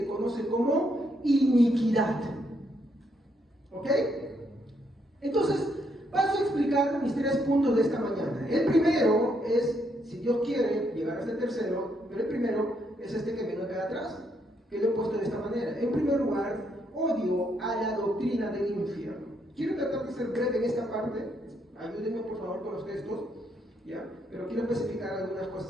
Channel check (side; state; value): both; normal; correlation 0.75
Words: conoce como iniquidad. ¿Ok? Entonces, paso a explicar mis 3 puntos de esta mañana. El primero es, si Dios quiere llegar hasta el tercero, pero el primero es este que viene acá atrás, que lo he puesto de esta manera. En primer lugar, odio a la doctrina del infierno. Quiero tratar de ser breve en esta parte, ayúdenme por favor con los textos, ¿ya? Pero quiero especificar algunas